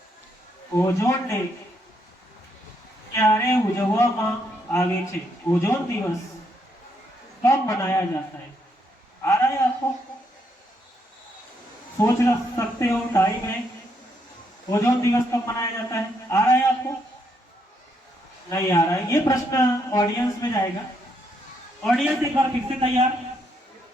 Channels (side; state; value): both; normal; correlation 0.75